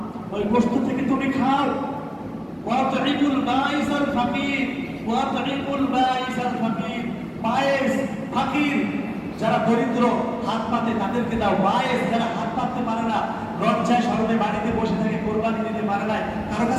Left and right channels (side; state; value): both; identical; correlation 1.00